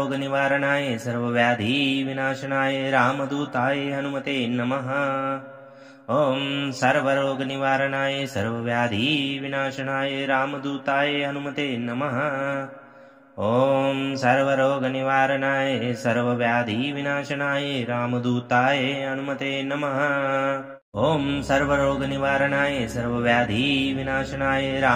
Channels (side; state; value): both; identical; correlation 1.00